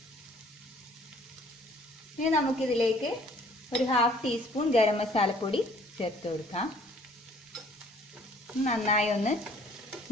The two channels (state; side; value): normal; both; correlation 0.57